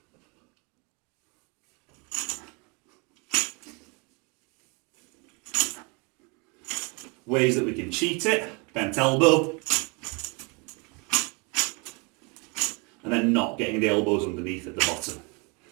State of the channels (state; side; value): quieter; left; 31.2 dB